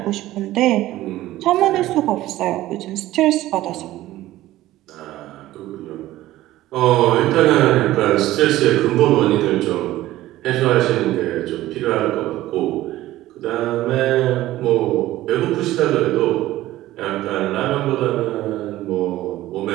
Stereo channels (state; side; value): quieter; left; 15.6 dB